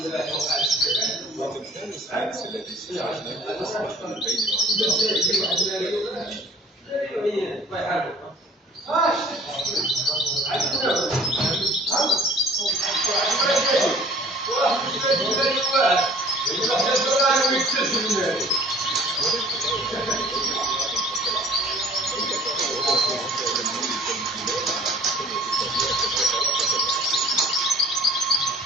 وتمثال السفنكس الذي استخرجناه أصبح من بين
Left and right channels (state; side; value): normal; both; correlation 0.50